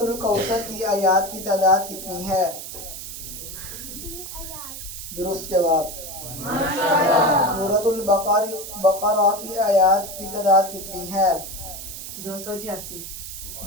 کی آیات کی تعداد کتنی ہے؟ درست جواب۔ سورۃ البقرہ کی آیات کی تعداد کتنی ہے؟ 286۔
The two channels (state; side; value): noise; right; hiss, 10 dB below the sound